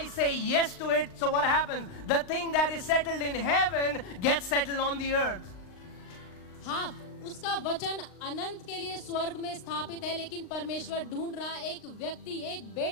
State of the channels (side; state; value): right; late; 39 ms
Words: say yes to it. So what happens? The thing that is settled in heaven gets settled on the earth. हाँ, उसका वचन अनंत के लिए स्वर्ग में स्थापित है, लेकिन परमेश्वर ढूंढ रहा एक व्यक्ति, एक